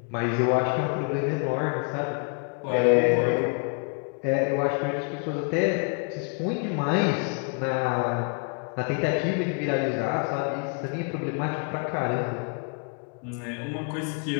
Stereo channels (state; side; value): quieter; right; 38.4 dB